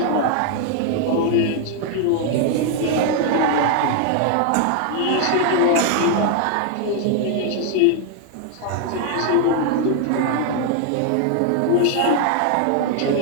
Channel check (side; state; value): both; different; correlation 0.00